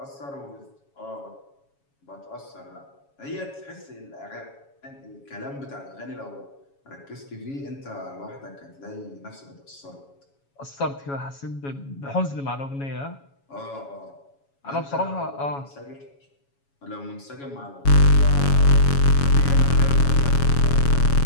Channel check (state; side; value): late; right; 7.2 ms